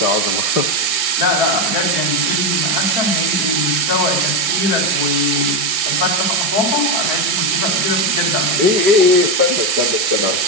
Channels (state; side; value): late; left; 5.8 ms